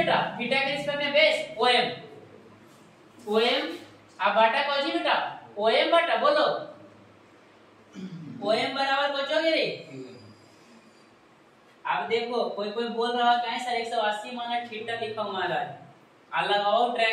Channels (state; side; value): identical; both; correlation 1.00